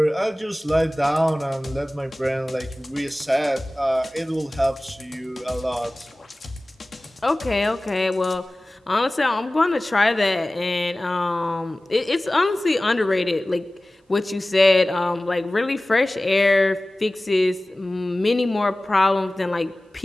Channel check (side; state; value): both; normal; correlation 0.98